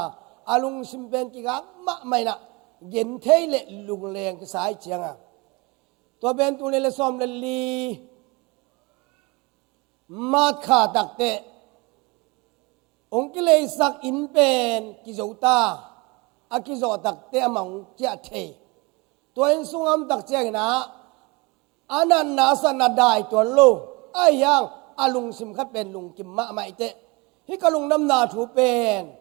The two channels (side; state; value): left; quieter; 26.2 dB